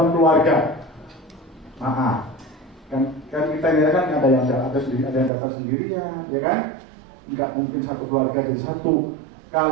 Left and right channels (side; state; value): left; drops out; at 5.3 s